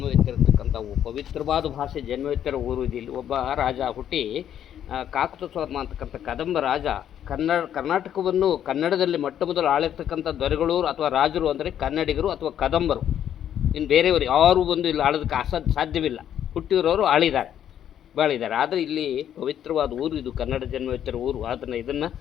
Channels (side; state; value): right; quieter; 10.1 dB